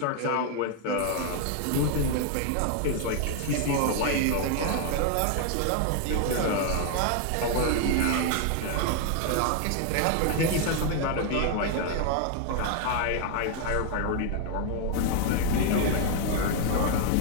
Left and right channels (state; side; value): different; both; correlation 0.00